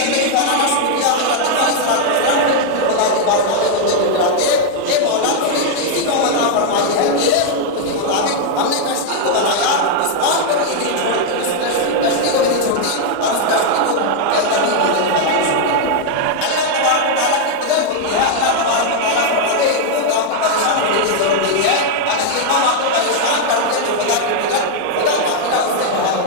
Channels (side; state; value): both; different; correlation 0.00